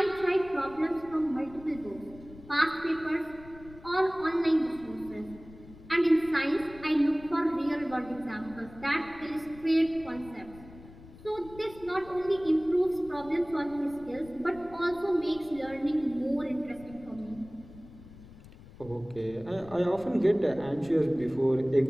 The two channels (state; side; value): noise; left; rumble, 19 dB below the sound